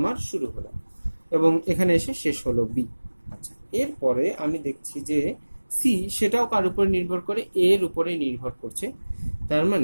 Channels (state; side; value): inverted; both; correlation -1.00